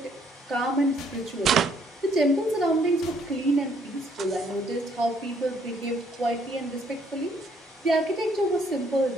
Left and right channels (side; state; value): both; normal; correlation 0.67